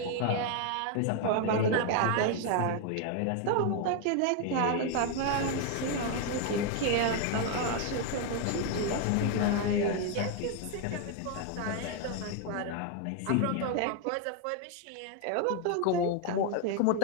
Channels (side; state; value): both; different; correlation 0.01